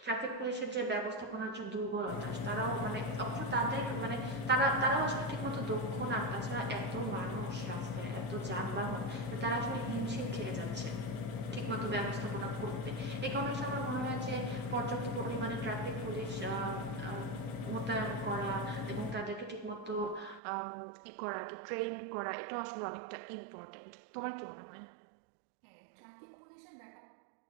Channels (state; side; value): drops out; left; at 20.4 s